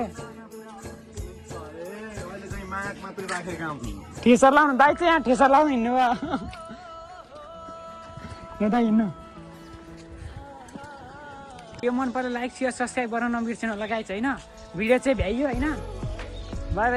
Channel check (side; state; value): both; identical; correlation 1.00